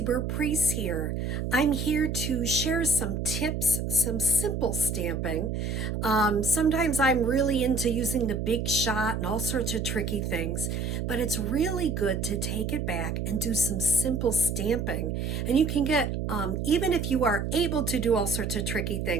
Burt-Preece here. I'm here to share some tips, some simple stamping. Sometimes I'm really into using the big shot and all sorts of tricky things, but it's really good to take it back and do some simple stamping. And you can get, even if you are able to do all sorts of tricky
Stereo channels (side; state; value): right; noise; hum, 2 dB below the sound